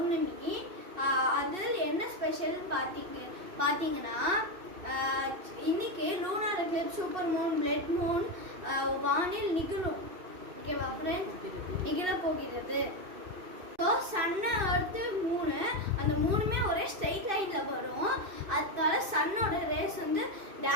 அதில் என்ன ஸ்பெஷல்னு பார்த்தீங்கன்னா இன்னைக்கு lunar Eclipse, super Moon, blood Moon வானில் நிகழும். ஓகேவா ஃப்ரெண்ட்ஸ்? நிகழ போகிறது. ஸோ சன்னு, எர்த்து, மூணு, அந்த மூணுமே ஒரே ஸ்ட்ரைட் லைனில் வரும். அதனால சன்னோட ரேஸ் வந்து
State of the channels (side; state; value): left; late; 2.6 ms